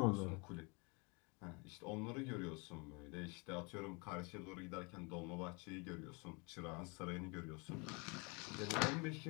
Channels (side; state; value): right; quieter; 30.6 dB